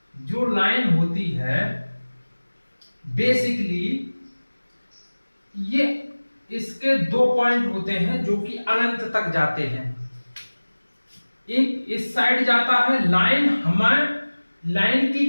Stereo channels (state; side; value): inverted; both; correlation -1.00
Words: जो लाइन होती है, बेसिकली ये इसके दो पॉइंट होते हैं जो कि अनंत तक जाते हैं। एक इस साइड जाता है, लाइन